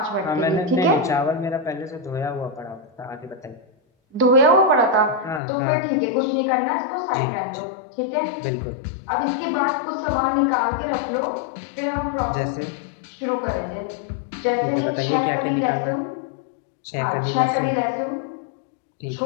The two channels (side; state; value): right; drops out; at 5.4 s